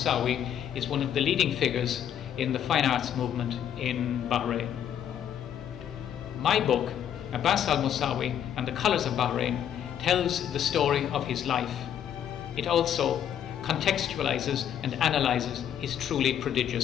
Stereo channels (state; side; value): quieter; right; 9.7 dB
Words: is one of the leading figures in the fine arts movement in Bahrain. My book, Abbas Al Mosawi and the Colours of Bahrain, tells the story of his life. It also contextualizes and analyzes his truly